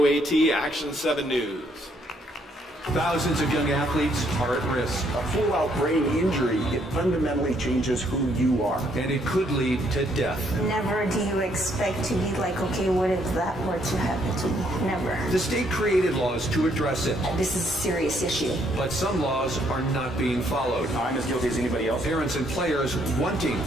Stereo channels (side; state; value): both; normal; correlation 0.69